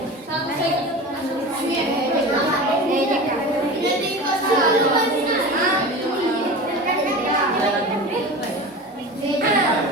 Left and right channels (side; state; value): both; normal; correlation 0.32